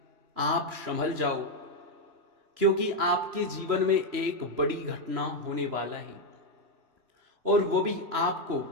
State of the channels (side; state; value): left; late; 3.0 ms